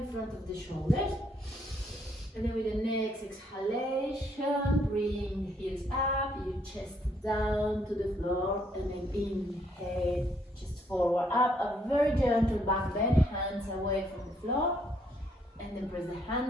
front of the shoulders. And then with the next exhalation, bring the heels up, your chest down to the floor, and then inhale, chest forward up, a very gentle back bend, hands away from the floor, and then press the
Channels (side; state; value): both; normal; correlation 0.70